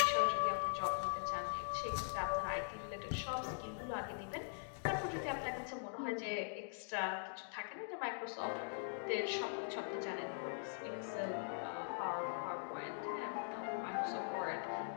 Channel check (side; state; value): right; silent; digital silence